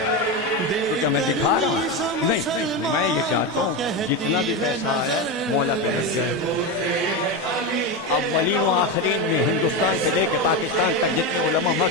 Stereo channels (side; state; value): both; normal; correlation 0.15